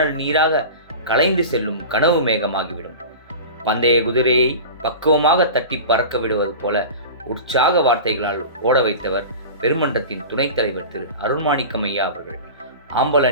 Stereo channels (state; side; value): inverted; both; correlation -0.32